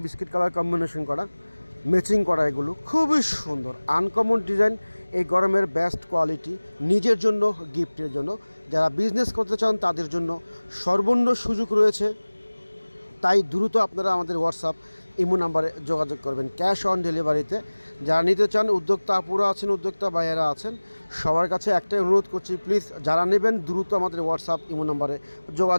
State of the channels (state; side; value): inverted; both; correlation -1.00